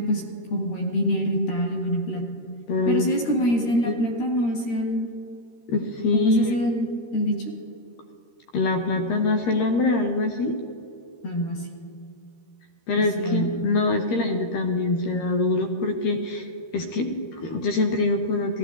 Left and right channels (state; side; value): late; right; 13 ms